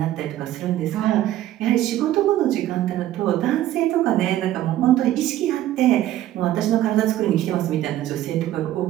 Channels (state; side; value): quieter; left; 13.4 dB